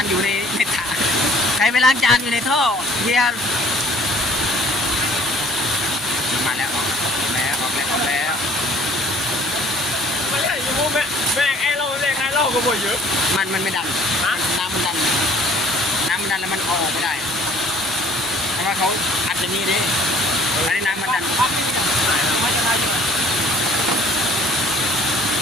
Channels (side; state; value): both; normal; correlation 0.54